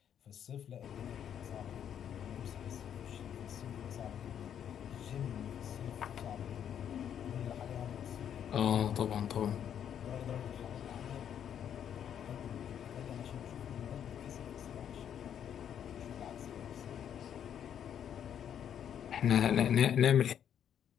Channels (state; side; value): quieter; right; 9.2 dB